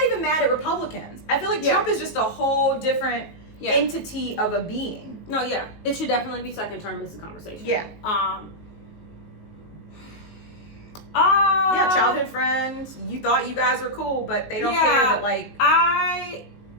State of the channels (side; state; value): right; late; 18 ms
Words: even mad at Republicans. I feel like Trump is just a whole different entity of a being. No, it should definitely be second term. Is the conversation. Childhood friends. You thought you guys were cool, but they don't care that